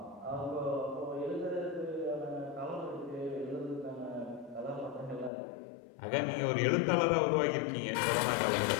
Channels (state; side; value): drops out; right; at 5.3 s